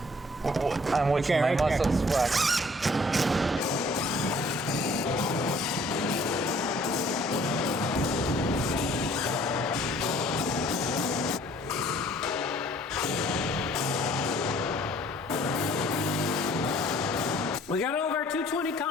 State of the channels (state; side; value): normal; both; correlation 0.56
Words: I'm watching my right there. muscles flex. We got all of our 220